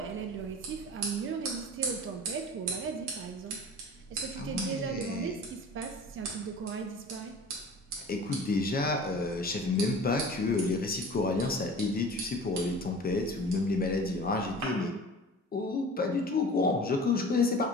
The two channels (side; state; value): both; normal; correlation 0.40